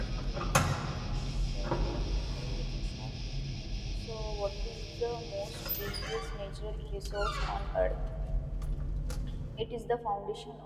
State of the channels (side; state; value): both; identical; correlation 1.00